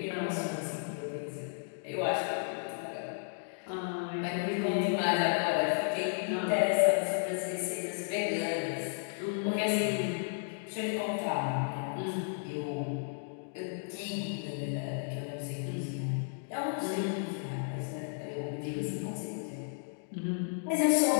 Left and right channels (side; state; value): right; silent; digital silence